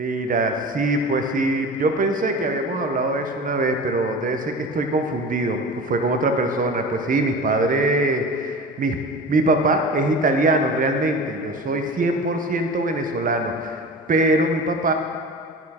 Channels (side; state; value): both; normal; correlation 0.34